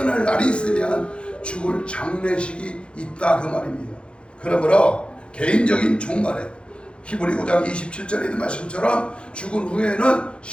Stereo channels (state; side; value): late; right; 0.057 ms